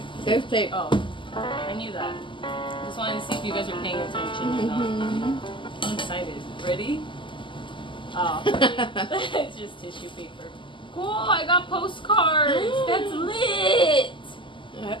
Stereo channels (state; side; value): late; right; 0.24 ms